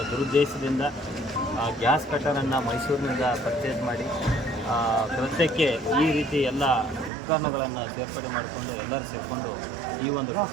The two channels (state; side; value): drops out; left; at 7.1 s